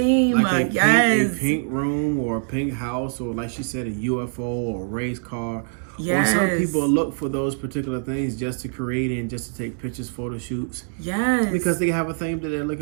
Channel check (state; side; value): silent; left; digital silence